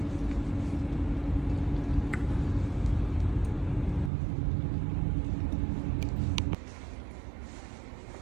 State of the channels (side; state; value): left; drops out; at 4.1 s